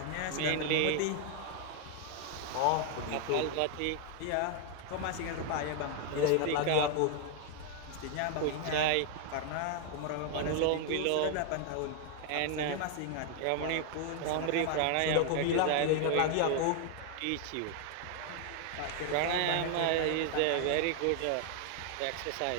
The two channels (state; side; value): different; both; correlation 0.00